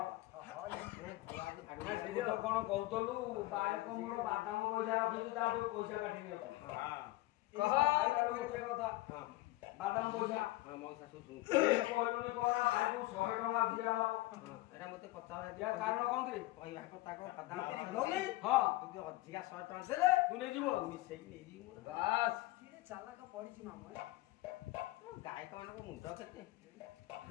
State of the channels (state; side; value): quieter; right; 18.4 dB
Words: କଣ କହୁଥିଲୁ ବାଳକ ମୋର ବାଦାମ ପଇସା ରଖିଛୁ ତାଠୁ ପଇସା କାଟି ନିଅନ୍ତୁ କଥା ବାଦାମ ପଇସା କହିଲୁନି କଣ ତାକୁ 100 ଟଙ୍କା ଦିଆହବ ଏଟା ମତେ ପଚାର କାରଣ କଣ କି କହିବା କଥା କଣ ବାଦାମ ହଁ ତୁ ଅଧିକା 100 ଟଙ୍କା ଦେଲେ ତୁ ନେଇଯିବୁ ମିଶେଇକି ନେଇଯିବୁ ବାସ୍ କିଏ ଚାଲାକ ପଡିଛି ମାମୁଁ ଗାୟକ ମାନଙ୍କ ମୁଣ୍ଡ କେତେ